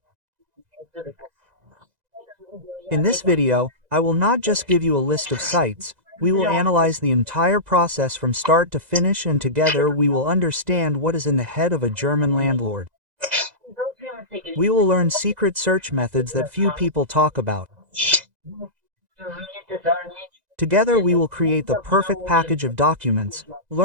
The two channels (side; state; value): left; late; 2.0 ms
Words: In this video, I will not just give you a list of sites, we will analyze the entire process from start to finish, and together we will understand what is in the head of a German landlord. We will learn secret search methods that few people talk about. Together we will create the perfect package of documents,